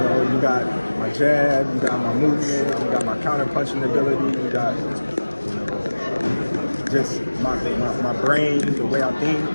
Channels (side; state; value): both; inverted; correlation -1.00